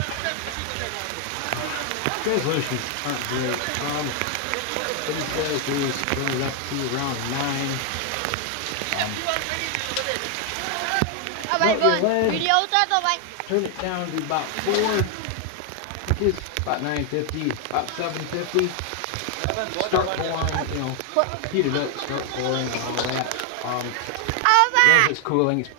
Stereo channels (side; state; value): both; different; correlation 0.00